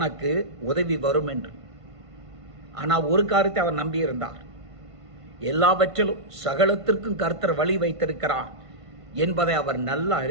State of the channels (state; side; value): late; left; 1.5 ms